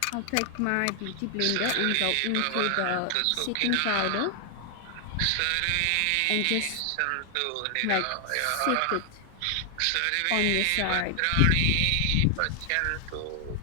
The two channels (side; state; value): both; different; correlation 0.00